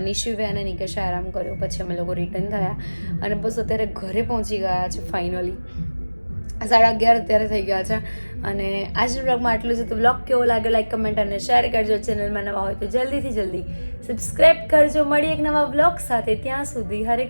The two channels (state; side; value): inverted; both; correlation -1.00